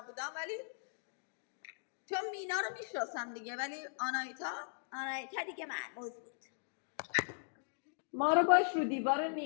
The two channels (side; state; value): right; silent; digital silence